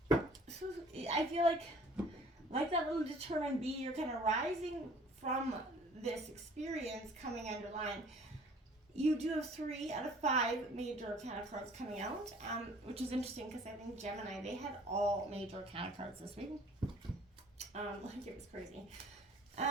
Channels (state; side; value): normal; both; correlation 0.53